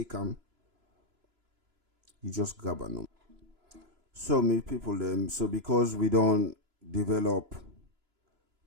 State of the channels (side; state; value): left; late; 3.0 ms